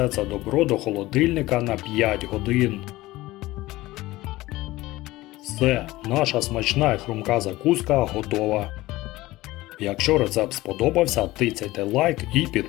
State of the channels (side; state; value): right; quieter; 18.3 dB